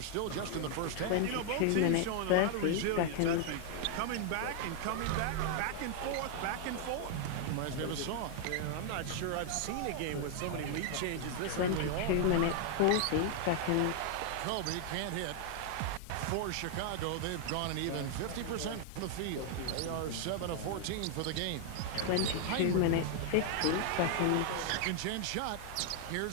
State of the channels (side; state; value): both; different; correlation 0.00